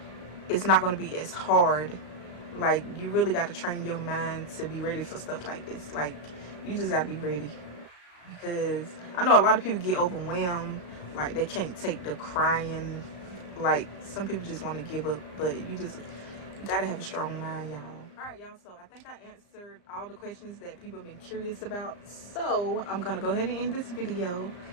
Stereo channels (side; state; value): right; late; 34 ms